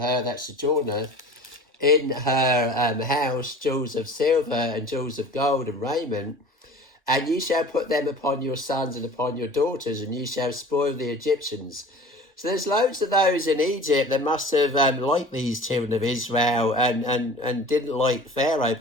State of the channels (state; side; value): normal; both; correlation 0.41